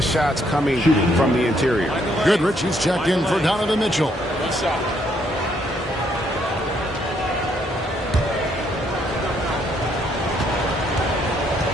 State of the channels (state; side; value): normal; both; correlation 0.71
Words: shots coming from the interior. Goodrich, he's checked in for Donovan Mitchell.